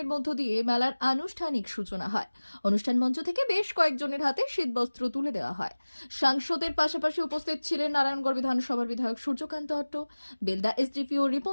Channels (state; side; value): inverted; both; correlation -1.00